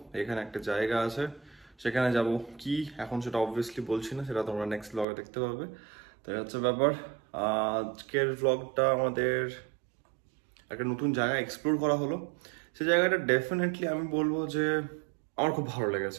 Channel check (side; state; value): left; drops out; at 5.1 s